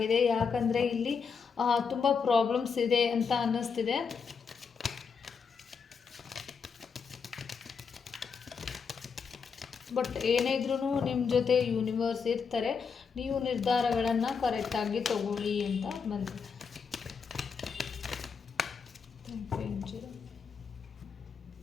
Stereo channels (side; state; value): right; quieter; 5.8 dB